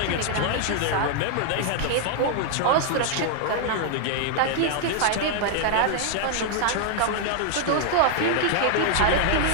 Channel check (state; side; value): different; both; correlation 0.00